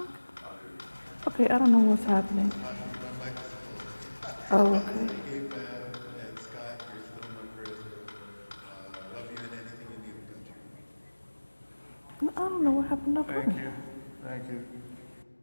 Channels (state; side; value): inverted; both; correlation -1.00